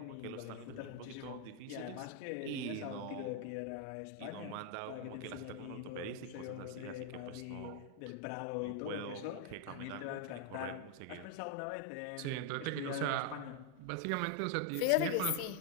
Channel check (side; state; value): both; different; correlation 0.00